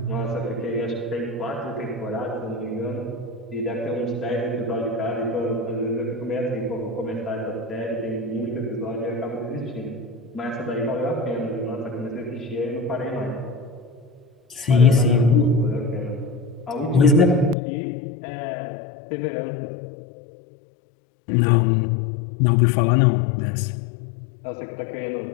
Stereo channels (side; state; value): right; drops out; at 17.6 s